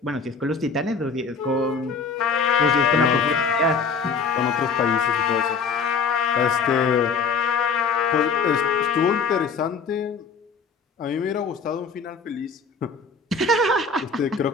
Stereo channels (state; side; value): quieter; right; 5.0 dB